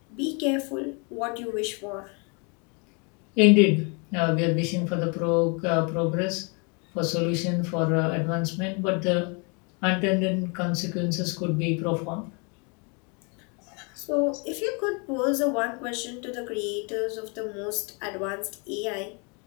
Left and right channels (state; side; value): quieter; right; 33.9 dB